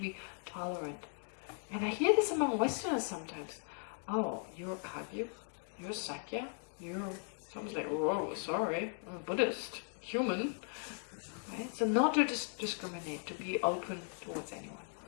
be tolerant. And I hear this among Westerners sometimes. Oh, you're Kagyu, you're Sakya, you're... Someone's like, whoa, sorry, I'm a Buddhist, human. Right? So not to discriminate, to be open towards anyone.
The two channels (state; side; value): silent; right; 52 dB below the other